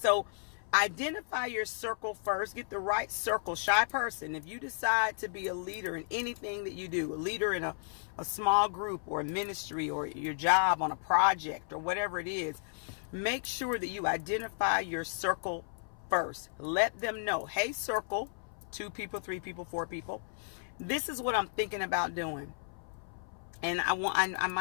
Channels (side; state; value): right; silent; 55 dB below the other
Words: identify your circle first. Get the right circle. Shy person, if you decide to be a leader in anything that you do, a leader in a small group or a ministry or your job on a project or whatever it is, make sure that you identify your circle first. Let them know, hey, circle, 2 people, 3 people, 4 people, this is what I'm thinking about doing, and I